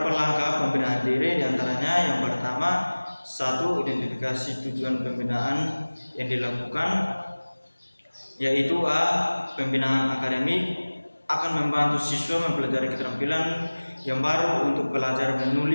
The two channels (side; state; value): both; inverted; correlation -1.00